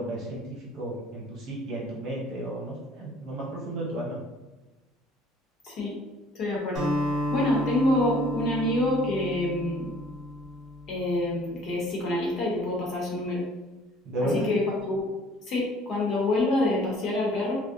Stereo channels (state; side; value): normal; both; correlation 0.55